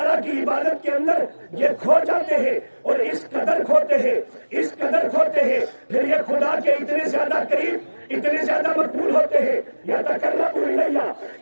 کی عبادت کے اندر یہ کھو جاتے ہیں، اور اس قدر کھوتے ہیں، اس قدر کھوتے ہیں، پھر یہ خدا کے اتنے زیادہ قریب، اتنے زیادہ مقبول ہوتے ہیں۔ يَتَقَرَّبُ إِلَيَّ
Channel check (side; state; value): both; inverted; correlation -1.00